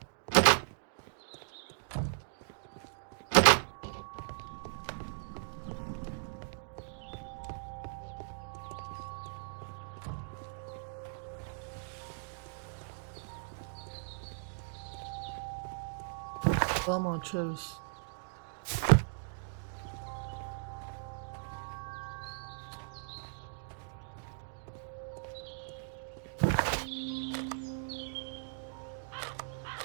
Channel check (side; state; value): left; silent; digital silence